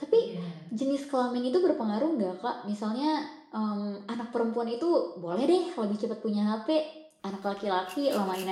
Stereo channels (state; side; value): identical; both; correlation 1.00